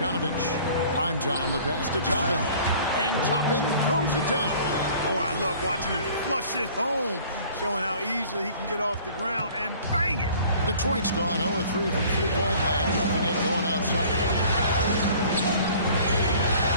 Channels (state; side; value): inverted; both; correlation -0.50